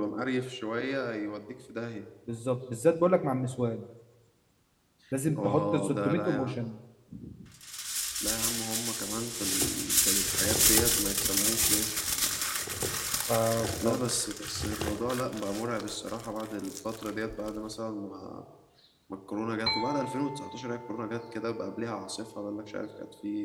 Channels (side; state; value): both; identical; correlation 1.00